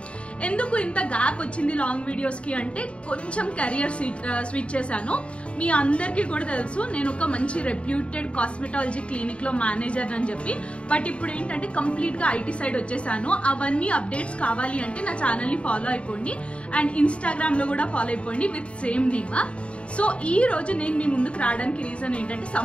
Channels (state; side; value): late; right; 0.060 ms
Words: ఎందుకు ఇంత గ్యాప్ వచ్చింది లాంగ్ వీడియోస్ కి అంటే కొంచెం కెరియర్ స్విచ్ చేశాను. మీ అందరికీ కూడా తెలుసు నేను ఒక మంచి రెప్యూటెడ్ కాస్మెటాలజీ క్లినిక్ లో మేనేజర్ అని చెప్పి. బట్ ఇప్పుడు ఏంటంటే కంప్లీట్ గా ఐటీ సైడ్ వచ్చేసాను. అవన్నీ అప్డేట్స్ కావాలి అంటే నా ఛానల్ ని ఫాలో అయిపోండి అండ్ ఇన్స్టాగ్రామ్ లో కూడా ఫాలో అయిపోండి విత్ సేమ్ నేమ్. సో ఈ రోజు నేను మీ ముందుకు రావడానికి రీజన్ ఏంటంటే